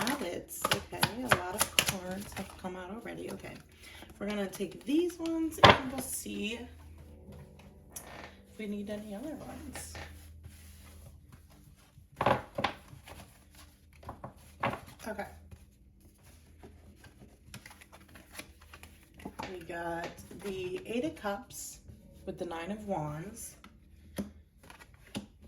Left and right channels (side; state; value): both; identical; correlation 1.00